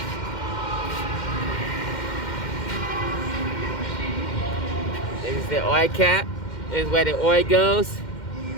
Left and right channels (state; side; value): late; right; 2.1 ms